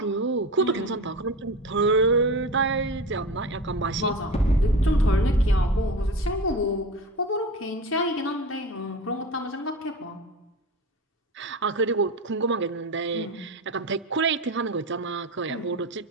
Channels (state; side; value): normal; both; correlation 0.29